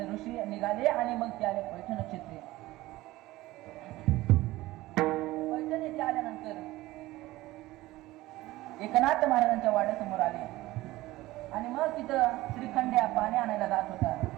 ऋषी निघाले आणि मग ते आले पैठ नक्षत्रे. पैठण येथे आल्यानंतर एकनाथ महाराजांच्या वाड्यासमोर आले आणि मग तिथं श्रीखंड्या पाणी आणायला जात होता.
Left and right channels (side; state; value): left; quieter; 18.0 dB